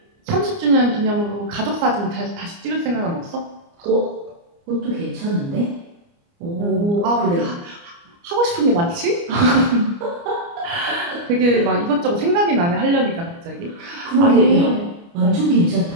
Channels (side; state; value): left; late; 29 ms